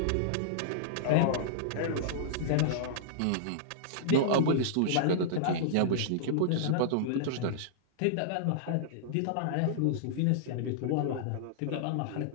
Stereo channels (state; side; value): different; both; correlation -0.02